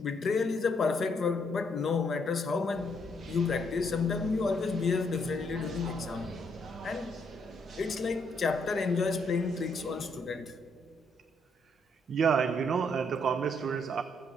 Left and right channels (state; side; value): normal; both; correlation 0.72